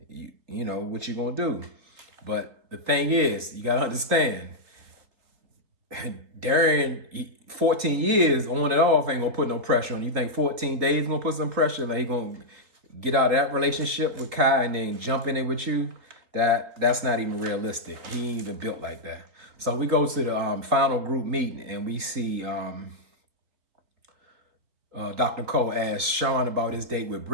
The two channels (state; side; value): late; left; 3.8 ms